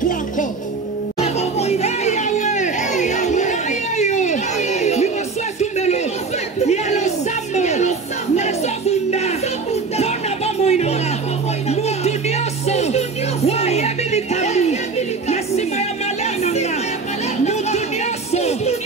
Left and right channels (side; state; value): left; quieter; 4.4 dB